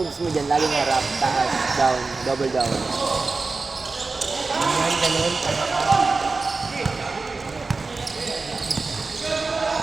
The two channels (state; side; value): quieter; left; 3.9 dB